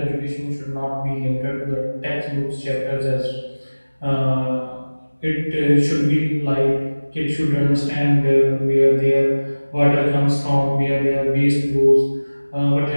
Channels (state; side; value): inverted; both; correlation -1.00